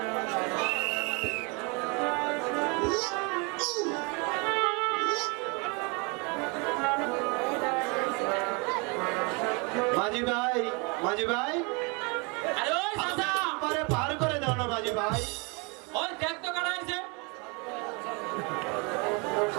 মাঝি ভাই, আরে ওই চাচা, পারে পার করে দাও না মাঝি ভাই। ওই দেখ তো কাটা আছে।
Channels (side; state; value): left; quieter; 31.3 dB